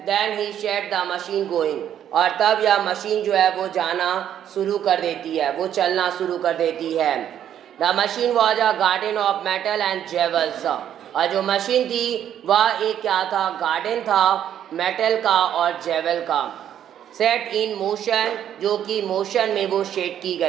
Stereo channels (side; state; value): left; quieter; 10.1 dB